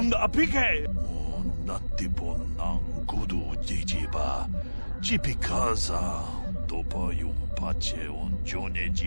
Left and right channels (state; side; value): inverted; both; correlation -1.00